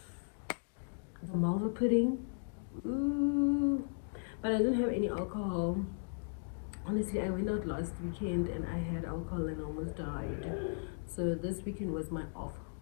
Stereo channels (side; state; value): right; silent; digital silence